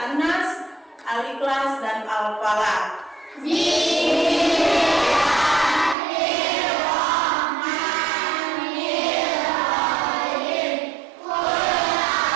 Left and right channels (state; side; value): drops out; left; at 6.0 s